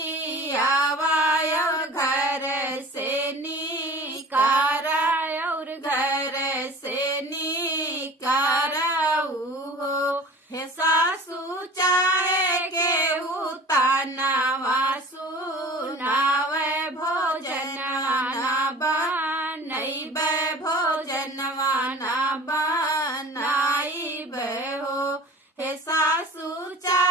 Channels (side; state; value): both; normal; correlation 0.42